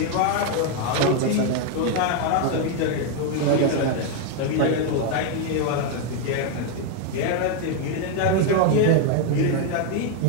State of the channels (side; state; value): both; different; correlation 0.01